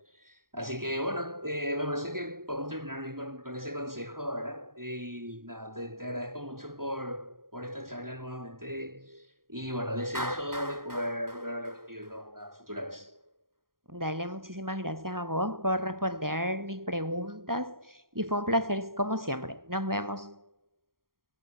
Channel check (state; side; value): late; left; 0.92 ms